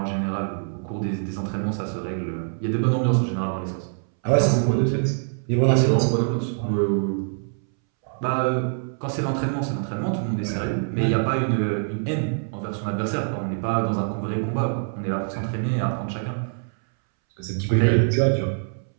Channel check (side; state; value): left; silent; 62 dB below the other